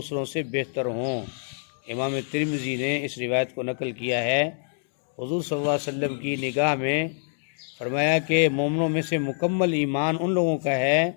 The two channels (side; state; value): right; silent; digital silence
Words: سے بہتر ہوں۔ امام ترمذی نے اس روایت کو نقل کیا ہے۔ حضور صلی اللہ علیہ وسلم کی نگاہ میں فرمایا کہ مومنوں میں سے مکمل ایمان ان لوگوں کا ہے